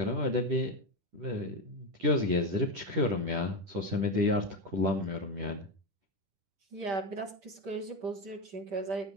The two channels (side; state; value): left; late; 10 ms